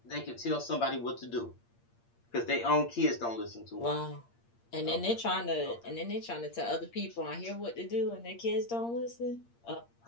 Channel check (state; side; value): late; right; 8.6 ms